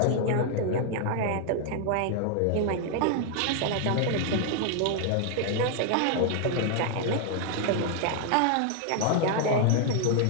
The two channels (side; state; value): both; different; correlation 0.00